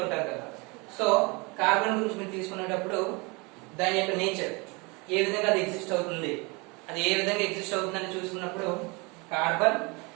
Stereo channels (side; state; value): left; quieter; 27.9 dB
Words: కదా. సో కార్బన్ గురించి మీరు తీసుకునేటప్పుడు దాని యొక్క నేచర్ ఏ విధంగా అది ఎగ్జిస్ట్ అవుతుంది, అది ఏ విధంగా ఎగ్జిస్ట్ అవుతుందని చూసుకున్నప్పుడు కార్బన్